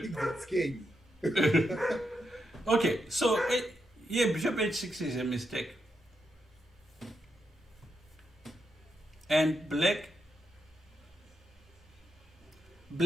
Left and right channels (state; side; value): normal; both; correlation 0.83